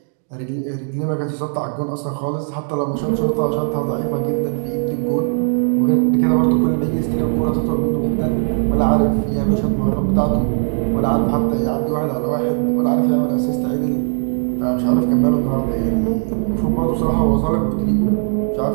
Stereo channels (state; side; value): silent; left; digital silence